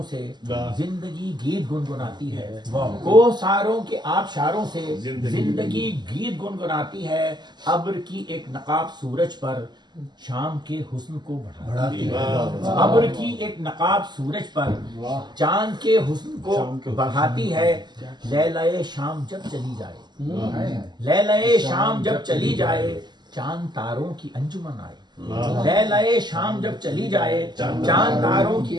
से जिंदगी गीत गुनगुनाती है, कोसारों के आबशारों से जिंदगी गीत गुनगुनाती है। अब्र की एक नकाब सूरज पर शाम के हुस्न को बढ़ाती है, अब्र की एक नकाब सूरज पर चांद के हुस्न को बढ़ाती है। लैलाए शाम जब चली जाए, लैलाए शाम जब चली जाए, चांद तारों की अंजुमन आए। लैलाए शाम जब चली जाए, चांद तारों की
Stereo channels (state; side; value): late; left; 0.21 ms